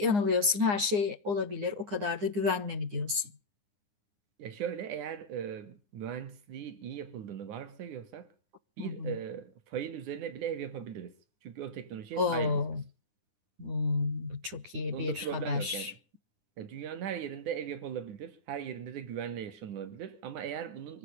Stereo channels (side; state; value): left; late; 9.8 ms